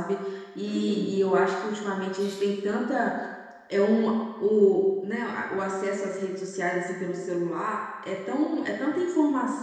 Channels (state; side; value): identical; both; correlation 1.00